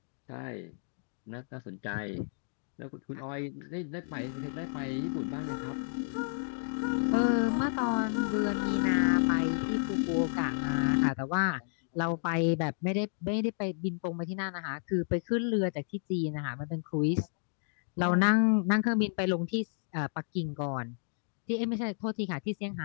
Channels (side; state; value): right; silent; digital silence